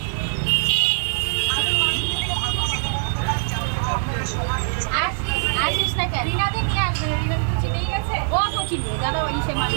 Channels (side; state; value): left; silent; digital silence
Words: আসিস না কেন? রিনাদে নিয়ে আসবে, রিনাদে তো চিনেই গেছে। ও চিনবে, দাদা ওই সে